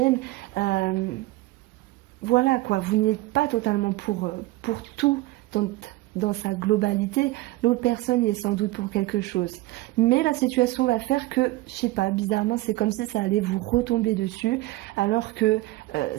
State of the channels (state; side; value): quieter; left; 19.1 dB